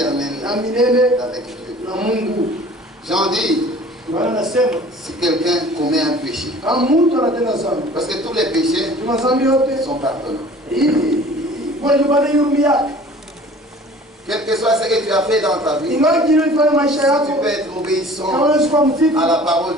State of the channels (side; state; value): both; normal; correlation 0.47